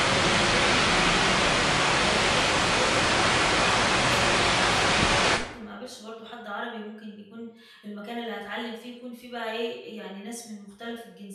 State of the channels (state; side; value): identical; both; correlation 1.00